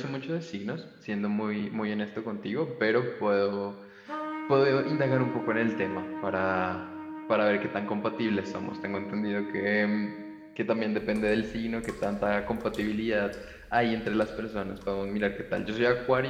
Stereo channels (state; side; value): identical; both; correlation 1.00